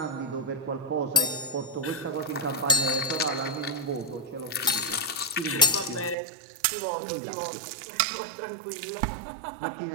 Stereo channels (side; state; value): left; drops out; at 6.2 s